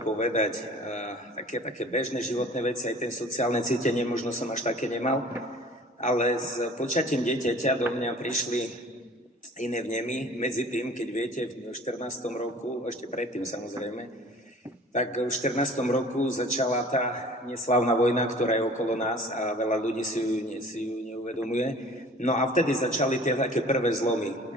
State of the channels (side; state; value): both; normal; correlation 0.47